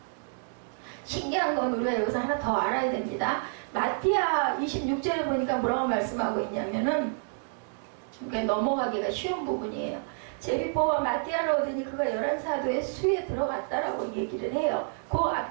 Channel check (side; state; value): left; silent; 59 dB below the other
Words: 신기한 건 우리가 여기서 하나 더 알아야 됩니다. 마띠아 26절에 보니까 뭐라고 말씀하고 있냐면은 넘어가기가 쉬운 부분이에요. 제비보와 마띠아를 얻으니 그가 11사도의 수에 들어갔다라고 얘기를 해요. 그